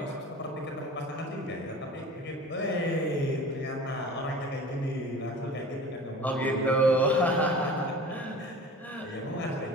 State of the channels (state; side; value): normal; both; correlation 0.40